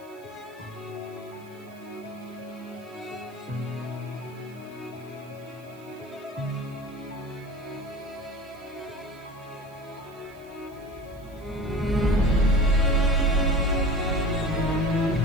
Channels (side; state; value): right; noise; hiss, 27 dB below the sound